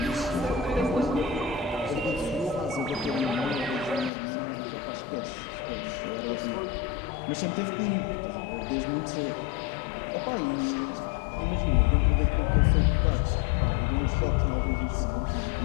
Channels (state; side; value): drops out; right; at 4.1 s